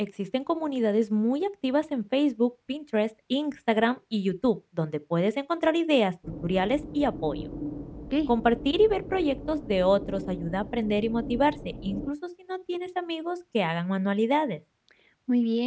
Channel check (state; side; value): identical; both; correlation 1.00